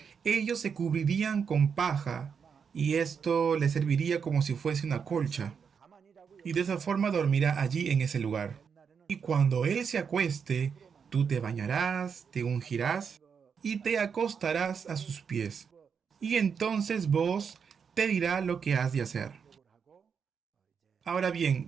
ellos se cubrirían con paja, y esto les serviría como si fuese una colcha. y de esa forma dormirá allí en ese lugar. Y cuando él se acueste, tú te bañarás, te ungirás y te acostarás a sus pies. Y entonces vos te dirá lo que has de hacer. Ahora bien,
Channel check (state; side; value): quieter; left; 6.5 dB